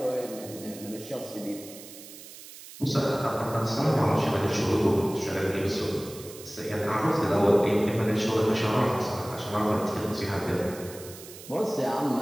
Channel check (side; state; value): right; noise; hiss, 16 dB below the sound